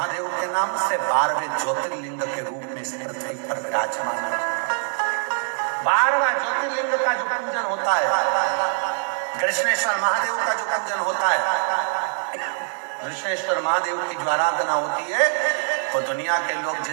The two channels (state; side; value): silent; left; 63 dB below the other